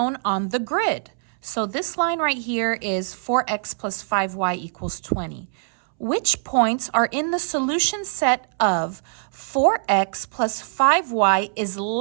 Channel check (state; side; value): silent; left; 63 dB below the other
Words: on the grid. So this line right here is 4x plus 5y equals 20. Which points are in the solution set of 4x plus 5y is